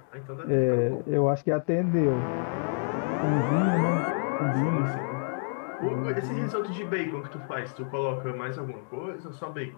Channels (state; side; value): silent; right; digital silence